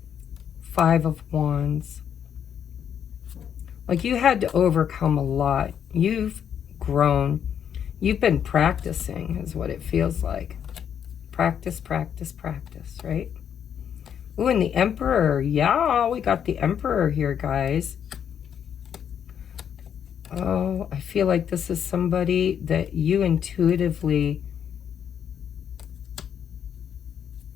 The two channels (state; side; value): quieter; right; 8.6 dB